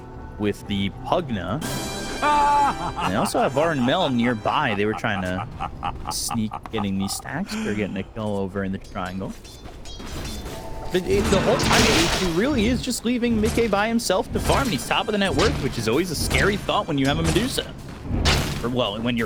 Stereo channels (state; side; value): identical; both; correlation 1.00